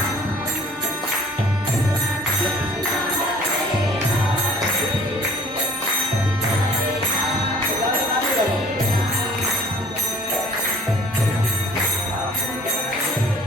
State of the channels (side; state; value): both; normal; correlation 0.52